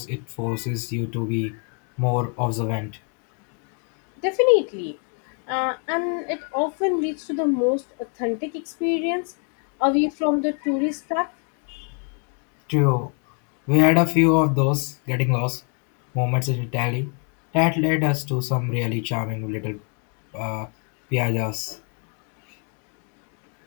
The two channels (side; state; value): right; quieter; 38.8 dB